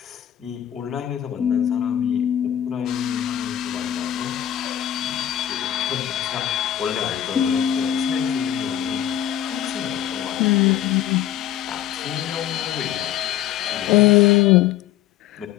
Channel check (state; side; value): quieter; right; 11.4 dB